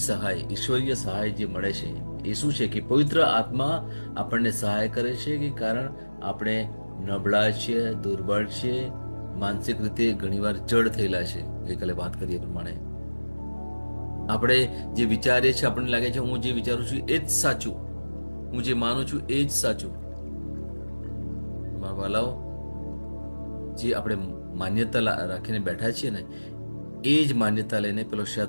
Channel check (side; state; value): both; inverted; correlation -1.00